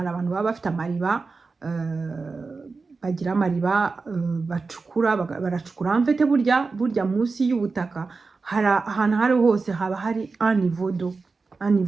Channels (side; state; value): left; quieter; 4.2 dB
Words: abantu baba bafite amariba, bagira amariba bacukura, baracukura mfite burya munsi y'ubutaka ahantu hari hose haba hari anivodo